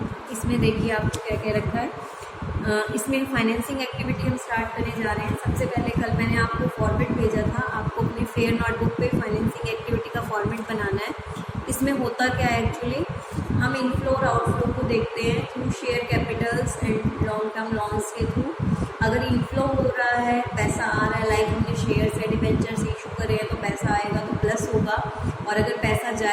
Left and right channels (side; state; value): both; identical; correlation 1.00